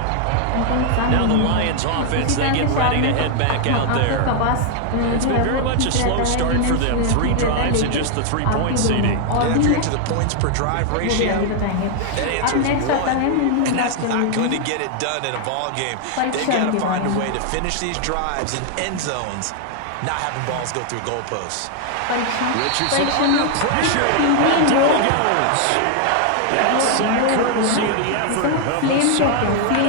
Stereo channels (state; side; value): different; both; correlation 0.00